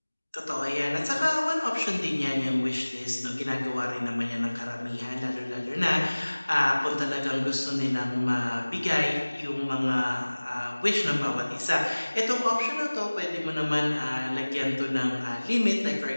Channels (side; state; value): both; inverted; correlation -1.00